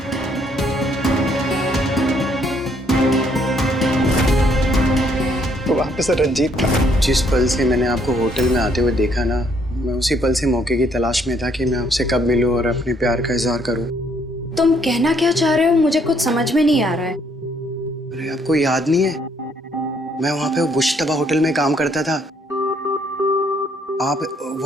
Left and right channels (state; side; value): normal; both; correlation 0.68